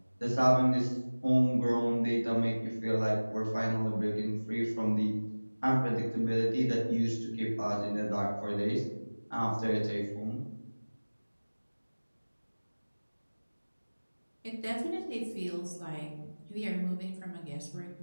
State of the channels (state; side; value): inverted; both; correlation -1.00